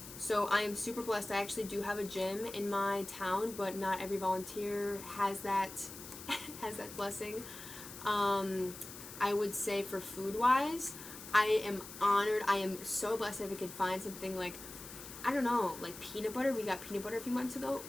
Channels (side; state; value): left; noise; hiss, 13 dB below the sound